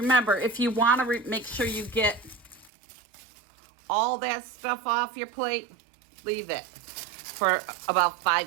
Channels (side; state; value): left; drops out; at 2.7 s